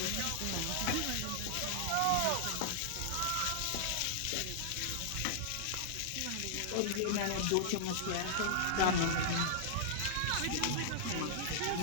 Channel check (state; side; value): different; both; correlation -0.01